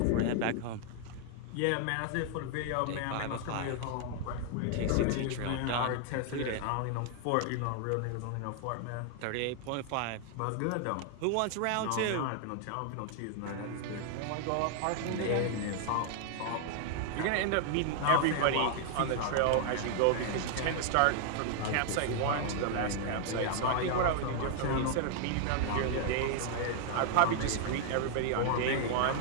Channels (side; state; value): both; different; correlation 0.00